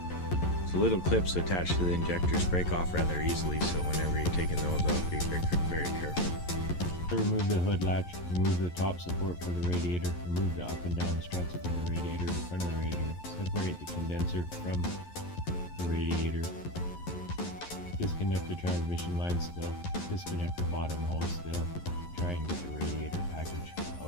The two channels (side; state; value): right; late; 11 ms